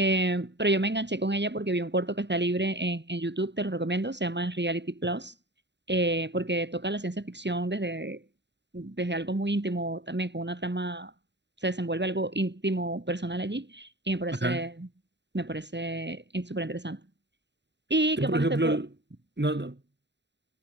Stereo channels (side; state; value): left; late; 0.51 ms